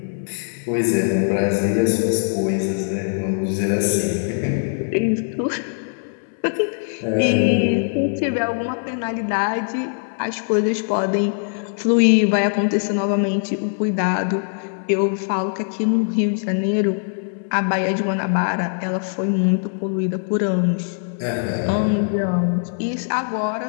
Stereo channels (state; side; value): silent; right; 65 dB below the other